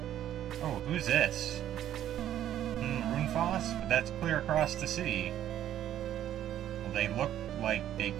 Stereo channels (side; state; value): left; quieter; 11.5 dB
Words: Oh, who's this? Ruinfast? But that's clear across the sea. Well, they look like they